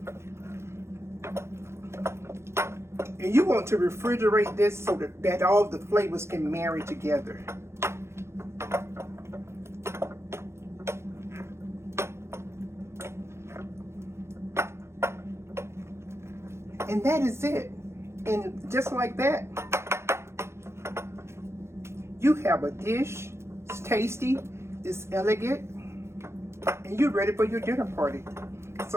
And you want to refrigerate this so that all the flavors can marry together. And that is it. And just like that, you have a dish. It's tasty, it's elegant, and you're ready for your dinner party.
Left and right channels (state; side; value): late; left; 0.13 ms